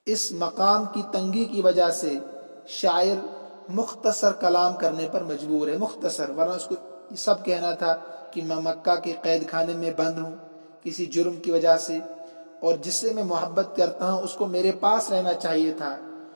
اس مقام کی تنگی کی وجہ سے شاعر مختصر کلام کرنے پر مجبور ہے، مختصر، ورنہ اس کو یہ سب کہنا تھا کہ میں مکہ کے قید خانے میں بند ہوں کسی جرم کی وجہ سے، اور جس سے میں محبت کرتا ہوں اس کو میرے پاس رہنا چاہیے تھا،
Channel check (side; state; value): both; inverted; correlation -1.00